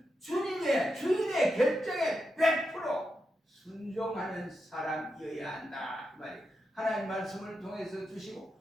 주인의 결정에 100% 순종하는 사람이어야 한다 이 말이에요. 하나님 말씀을 통해서 주시고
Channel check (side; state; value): both; normal; correlation 0.87